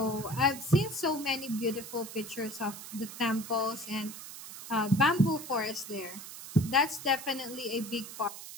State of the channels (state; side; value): noise; right; hiss, 12 dB below the sound